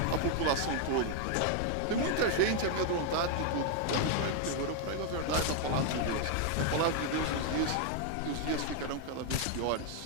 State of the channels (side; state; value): both; different; correlation 0.00